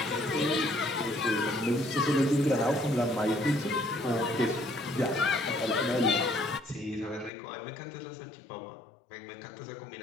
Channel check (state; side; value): drops out; right; at 7.3 s